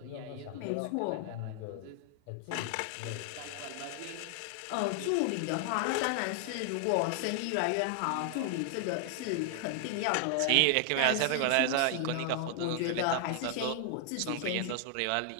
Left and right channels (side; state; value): both; different; correlation 0.00